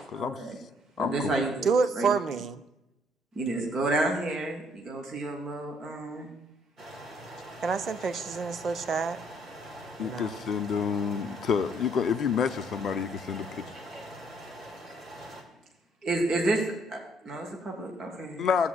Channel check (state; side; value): normal; both; correlation 0.66